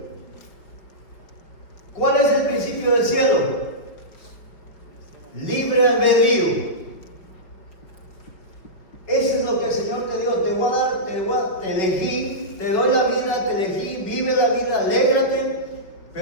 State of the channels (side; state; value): right; late; 5.3 ms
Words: ¿Cuál es el principio del cielo? Libre albedrío. Eso es lo que el Señor te dio. Te elegí, te doy la vida, te elegí, vive la vida, alégrate,